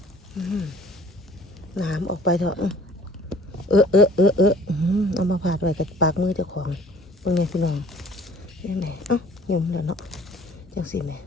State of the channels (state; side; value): normal; both; correlation 0.53